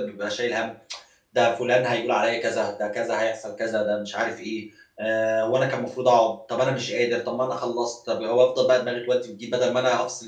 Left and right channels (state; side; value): identical; both; correlation 1.00